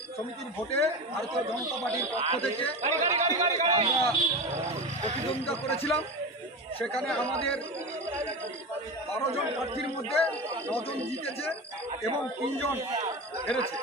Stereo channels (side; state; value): both; normal; correlation 0.25